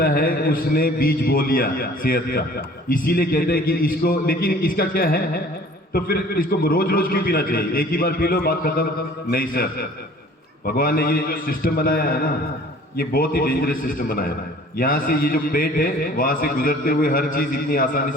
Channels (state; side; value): normal; both; correlation 0.50